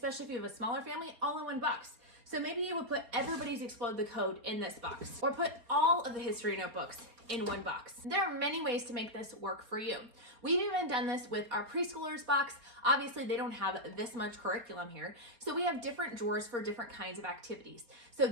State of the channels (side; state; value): left; late; 4.3 ms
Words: if you have a smaller family, all in one box. So maybe you would put everybody's Explode the Code in this box, or put all of the history notebooks in one box. There are many ways to make this work for you. We've even done this with our preschoolers box. Obviously, they don't have this much curriculum here, so we have different drawers for different kinds of activities. So